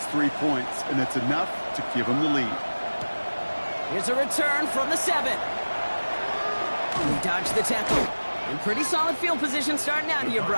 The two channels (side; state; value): both; inverted; correlation -1.00